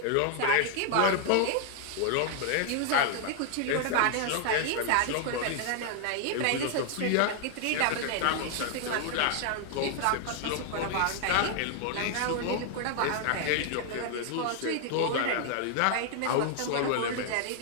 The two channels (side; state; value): both; different; correlation 0.00